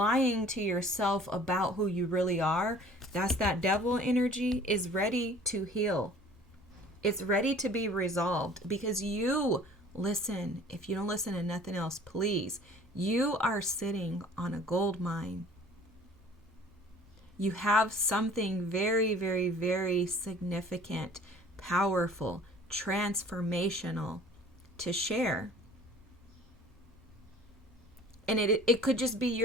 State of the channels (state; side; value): normal; both; correlation 0.49